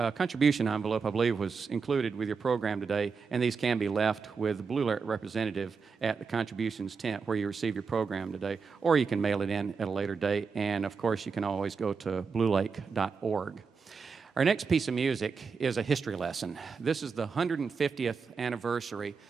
envelope, I believe, was included with your program today, and these can be left with the Blue Lake representative at the contributions tent where you receive your program today, or you can mail it in at a later date, and of course you can always go to bluelake.org. Our next piece of music is a history lesson. This is the 150th anniversary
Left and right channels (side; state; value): left; quieter; 5.3 dB